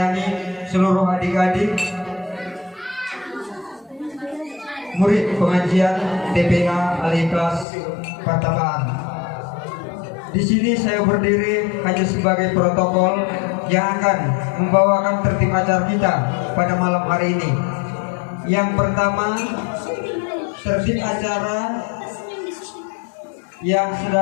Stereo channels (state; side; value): drops out; right; at 7.7 s